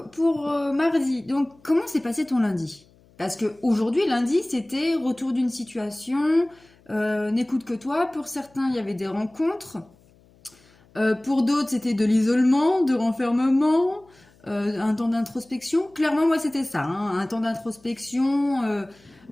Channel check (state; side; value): noise; left; hum, 30 dB below the sound